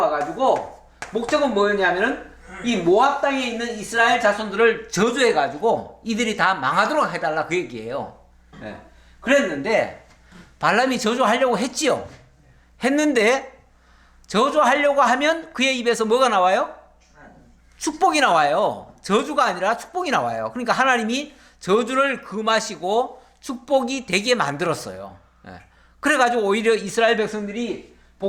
목적은 뭐였냐면은 이 모압 땅에 있는 이스라엘 자손들을 저주해가지고 이들이 다 망하도록 해달라 그 얘기예요. 그랬는데 발람이 저주하려고 했지요. 했는데 저주하려고 하면 그의 입에서 뭐가 나와요? 축복이 나와요. 저주가 아니라 축복이 나와요. 그러니까 하나님이 저주를 금하시고 축복이 되게 만들었어요. 그래가지고 오히려 이스라엘 백성들이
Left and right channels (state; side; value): identical; both; correlation 1.00